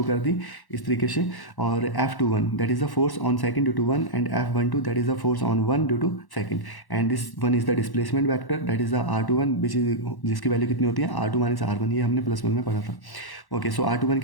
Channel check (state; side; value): late; right; 1.1 ms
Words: कर दी इस तरीके से। और F21 that is the force on second due to 1 and F12 that is the force on 1 due to second and this one is the displacement vector that is the R21 which is जिसकी value कितनी होती है R2 minus R1। ये हमने +1 में पढ़ा था। Okay, सो R21